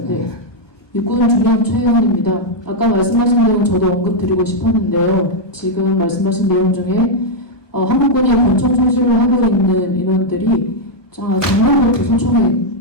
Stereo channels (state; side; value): late; right; 1.2 ms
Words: 네. 육군 중령 최혜원입니다. 아까 말씀하신 내용 저도 언급 드리고 싶었는데요. 지금 말씀하신 내용 중에 한국군이 권총 소실을 하고 있는 인원들이 작년부터 소총에